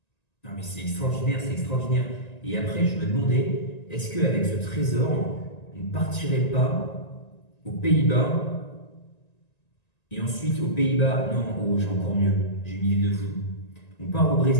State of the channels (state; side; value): late; right; 1.9 ms